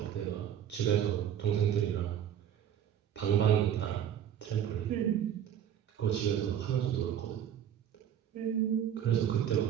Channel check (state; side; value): quieter; left; 9.7 dB